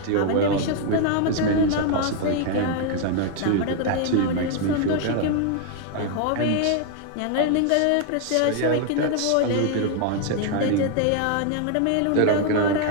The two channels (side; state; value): both; different; correlation 0.00